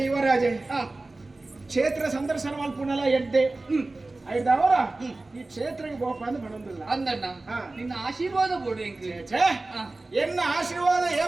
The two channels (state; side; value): quieter; left; 3.1 dB